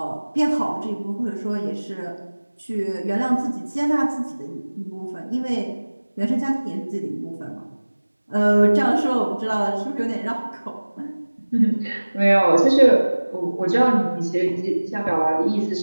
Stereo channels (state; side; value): inverted; both; correlation -1.00